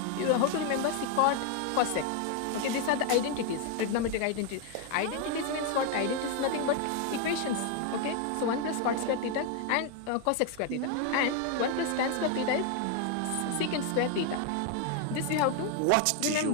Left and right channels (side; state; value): both; different; correlation 0.01